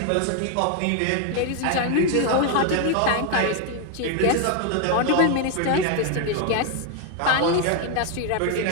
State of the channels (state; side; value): different; both; correlation 0.01